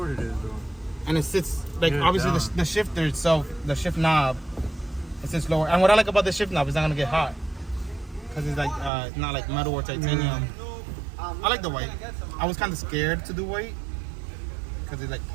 it is, though. And it sits like Yeah, obviously down. the shifter itself, the shift knob, it sits lower. And what I like about the shift knob is not gonna get hot because it's like it's not like metal or titanium. I like the white. I was kind of scared to do white because it like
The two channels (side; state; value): left; drops out; at 8.9 s